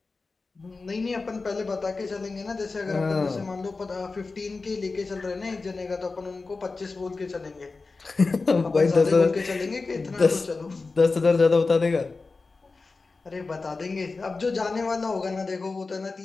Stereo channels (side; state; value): right; quieter; 3.9 dB